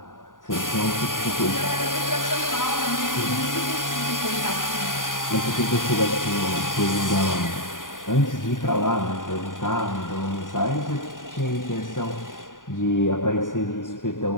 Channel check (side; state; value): right; late; 0.89 ms